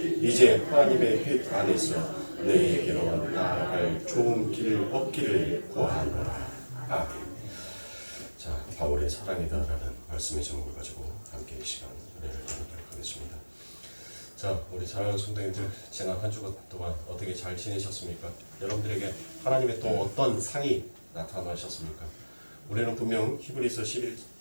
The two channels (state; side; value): inverted; both; correlation -1.00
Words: 이제 하나님의 뜻 안에서 너희에게로 나아갈 좋은 길을 얻기를 구하노라. 아멘. 자, 바울의 사랑이다라는 말씀의 제목을 가지고 함께 이 시간 은혜를 나누도록 하겠습니다. 자, 우리 사랑하는 성도님들, 지난 한 주간 동안 어떻게 잘 지내셨습니까? 여러분들에게 하나님의 또 어떤 상이 나타나셨습니까? 우리는 분명 히브리서